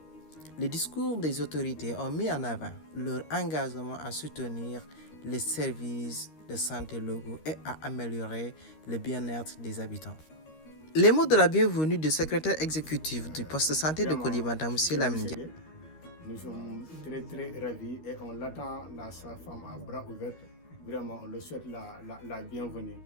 Les discours des autorités ont mis en avant leur engagement à soutenir les services de santé locaux et à améliorer le bien-être des habitants. Les mots de la bienvenue du secrétaire exécutif du poste de santé de Koulibantang, M. Lamine. Nous sommes très très ravis et on l'attend, la femme à bras ouverts. Vraiment, on le souhaite la bienvenue.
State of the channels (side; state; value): right; late; 13 ms